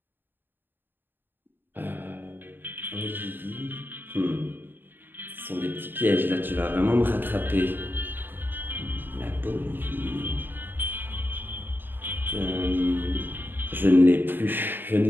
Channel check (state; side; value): late; left; 0.095 ms